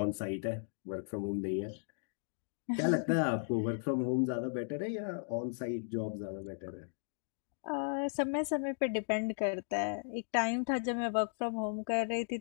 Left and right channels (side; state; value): right; silent; digital silence